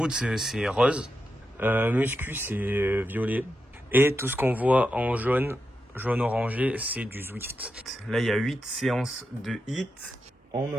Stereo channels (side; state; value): both; normal; correlation 0.87